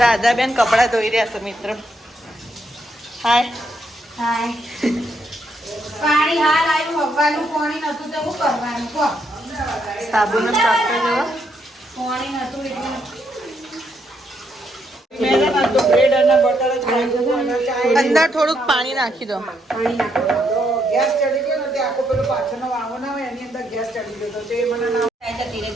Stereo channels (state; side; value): normal; both; correlation 0.76